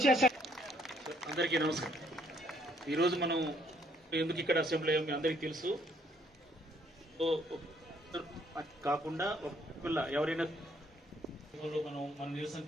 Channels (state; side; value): normal; both; correlation 0.67